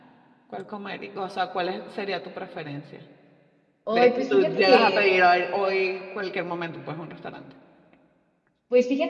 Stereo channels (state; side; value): identical; both; correlation 1.00